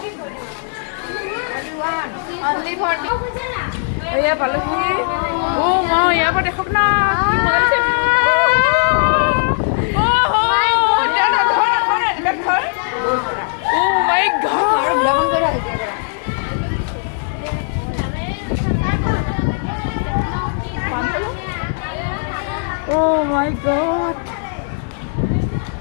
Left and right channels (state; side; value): silent; right; 67 dB below the other